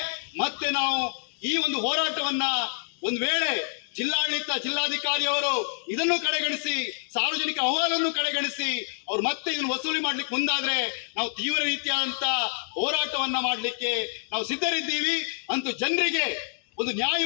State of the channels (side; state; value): right; silent; digital silence